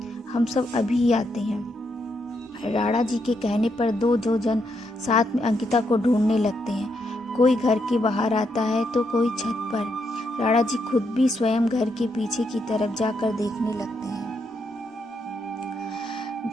हम सब अभी ही आते हैं। राणा जी के कहने पर दो जन साथ में अंकिता को ढूंढने लगते हैं। कोई घर के बाहर आता है तो कोई छत पर। राणा जी खुद भी स्वयं घर के पीछे की तरफ जाकर देखने लगते हैं।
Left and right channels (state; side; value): normal; both; correlation 0.79